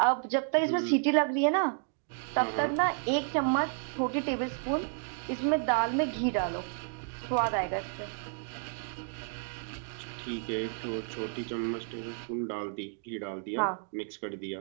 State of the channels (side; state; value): left; silent; 57 dB below the other